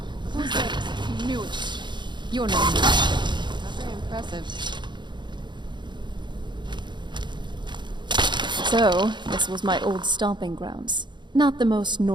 Who's that? Knew it. You're not very impressive. So, this was my old stomping grounds. Not the most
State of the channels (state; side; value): late; left; 0.22 ms